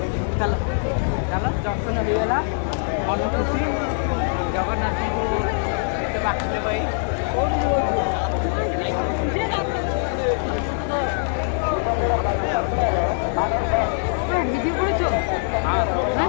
ଚାଲ ଚାଲ ଦର୍ଶନ ହେଇଗଲା ମନ ଖୁସି ଜଗନ୍ନାଥଙ୍କୁ ଏତେ ବାକିଲେ ଭାଇ ভিডিও করেছো হ্যাঁ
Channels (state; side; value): silent; right; digital silence